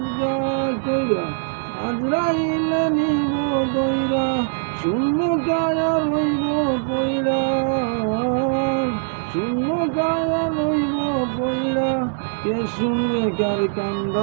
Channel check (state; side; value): silent; left; digital silence